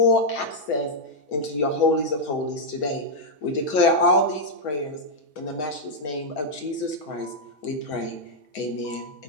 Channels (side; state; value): right; late; 6.8 ms